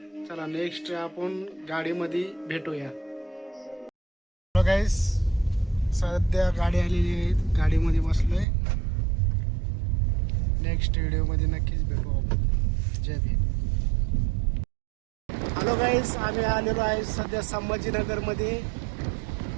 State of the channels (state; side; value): drops out; left; at 8.5 s